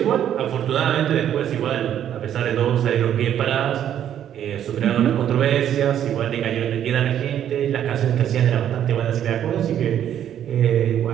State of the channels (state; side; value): quieter; left; 10.2 dB